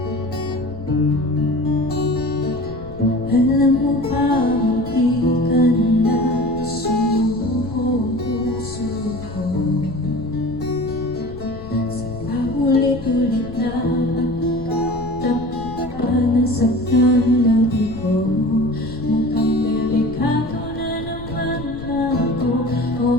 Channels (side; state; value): left; noise; rumble, 14 dB below the sound